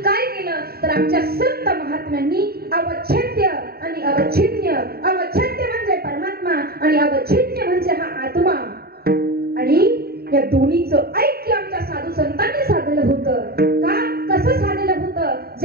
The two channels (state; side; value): late; left; 0.45 ms